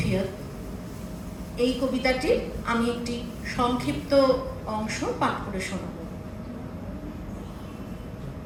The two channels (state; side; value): identical; both; correlation 1.00